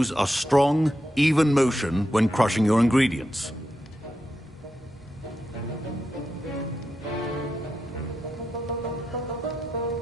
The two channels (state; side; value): normal; both; correlation 0.87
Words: a strong, even motion when crushing your ingredients.